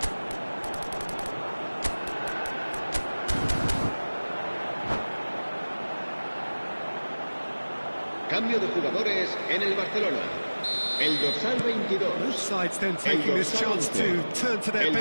Cambio de jugadores en el Barcelona. El dorsal 22. Both sides then taking this chance to turn to their El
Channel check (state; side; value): inverted; both; correlation -1.00